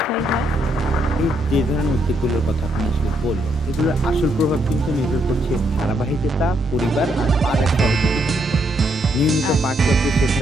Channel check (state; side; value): normal; both; correlation 0.76